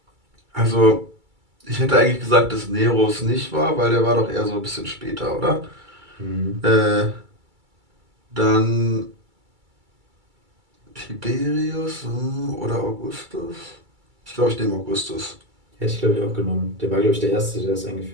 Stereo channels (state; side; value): late; left; 2.3 ms